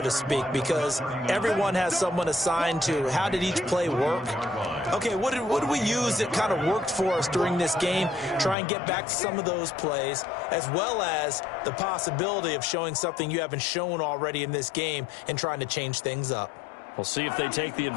speak, because everyone has someone assigned to how did each play work. Okay, what did we use that kind of worked for us during this game? Try and get back to some of those plays, as well as the possibility of showing something you haven't shown already in this game and trying to change things up. We'll see if they take the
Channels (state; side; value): drops out; right; at 8.6 s